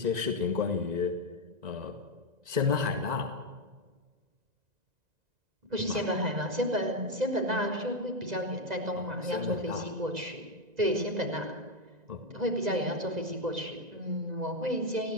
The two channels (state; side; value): late; left; 1.9 ms